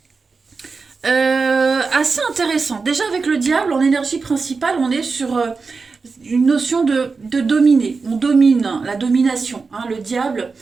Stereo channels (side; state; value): left; quieter; 4.5 dB